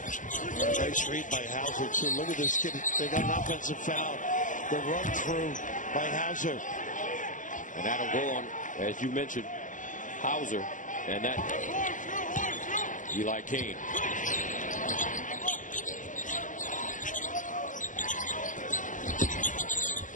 Nice read by Hauser, too. Look at this kid. They got an offensive foul. The run through by Hauser. And that'll go on, as you mentioned, Hauser. And that, Eli Kane.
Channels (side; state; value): right; late; 0.37 ms